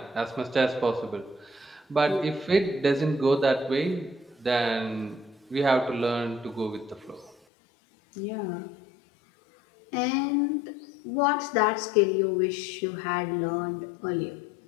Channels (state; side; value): drops out; right; at 7.4 s